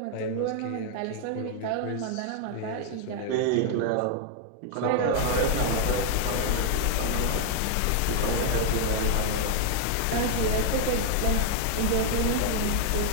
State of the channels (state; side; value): different; both; correlation 0.00